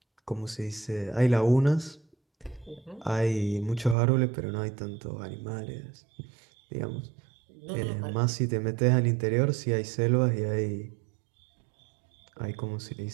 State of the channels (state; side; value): drops out; left; at 4.0 s